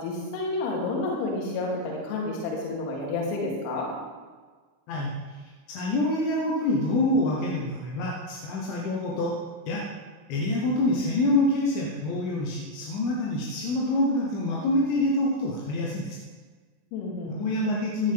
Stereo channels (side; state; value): right; late; 20 ms